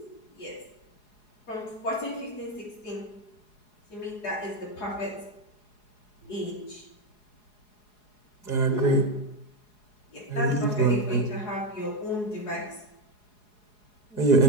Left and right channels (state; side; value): late; right; 4.8 ms